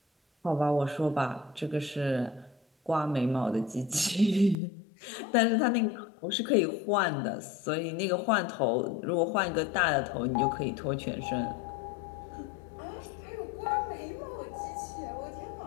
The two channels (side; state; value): right; drops out; at 4.5 s